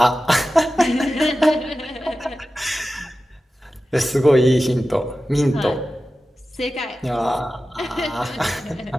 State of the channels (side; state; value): both; normal; correlation 0.94